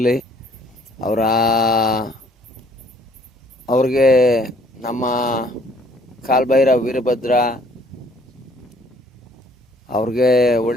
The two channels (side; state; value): both; normal; correlation 0.61